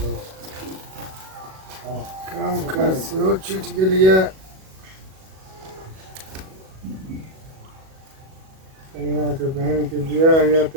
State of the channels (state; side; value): late; left; 37 ms